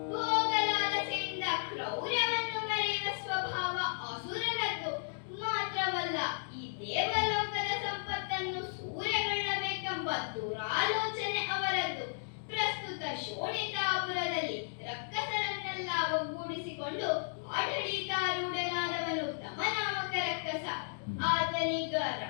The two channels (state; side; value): silent; right; digital silence